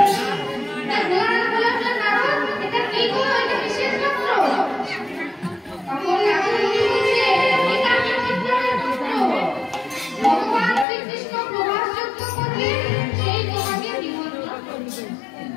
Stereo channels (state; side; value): drops out; right; at 10.9 s